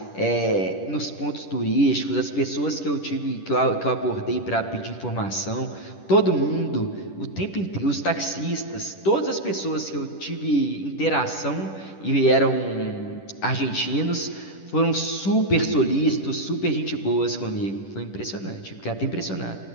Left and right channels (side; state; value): right; late; 10 ms